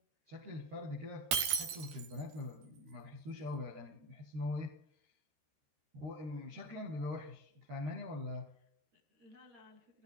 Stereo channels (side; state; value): left; late; 13 ms